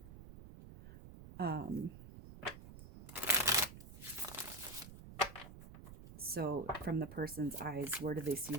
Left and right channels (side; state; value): right; noise; rumble, 15 dB below the sound